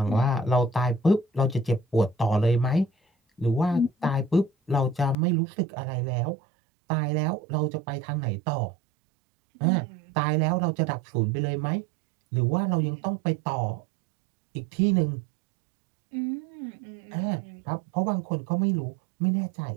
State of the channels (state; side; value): drops out; left; at 5.2 s